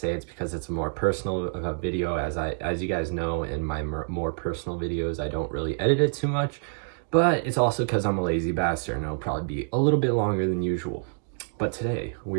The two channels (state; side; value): silent; left; digital silence